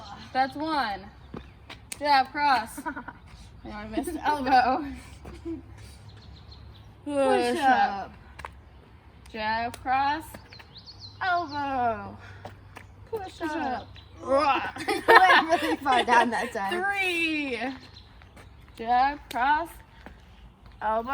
That's 1. Jab, cross. And I missed elbow. Push up. Jab, cross, elbow. Push up. up. I went really far down that time. 3. Jab, cross,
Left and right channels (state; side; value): identical; both; correlation 1.00